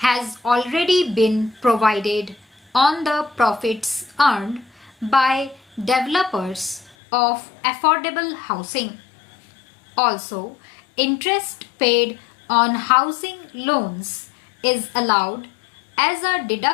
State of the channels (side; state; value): right; drops out; at 7.0 s